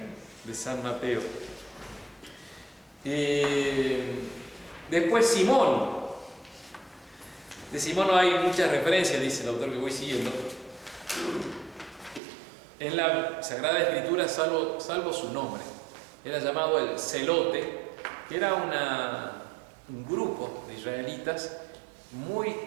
de San Mateo. Después Simón. De Simón no hay muchas referencias, dice el autor que voy siguiendo. En la Sagrada Escritura, salvo su nombre, era llamado el Celote, que era un grupo de israelitas muy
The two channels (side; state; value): left; drops out; at 12.2 s